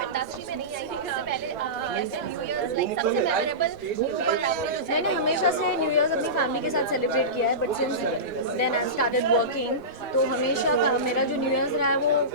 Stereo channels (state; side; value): normal; both; correlation -0.20